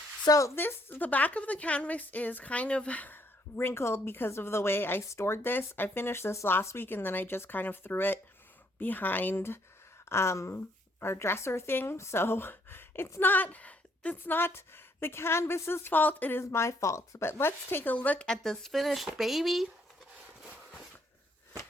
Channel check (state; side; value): normal; both; correlation 0.69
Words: So the back of the canvas is kind of wrinkled because of the way I stored this. I finished this last week and then I just kind of threw it behind our dresser thing. So it's not the canvas's fault, it is my fault. But let's take a look at this finished baby.